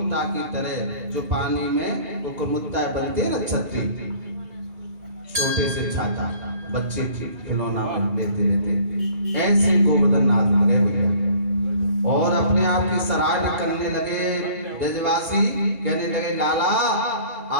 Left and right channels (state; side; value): late; left; 2.3 ms